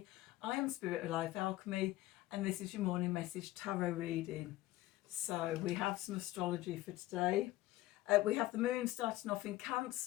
I am Spirit of Life Alchemy and this is your morning message tarot reading. So we have some astrology for today. We have the moon starting off in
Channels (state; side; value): quieter; right; 16.8 dB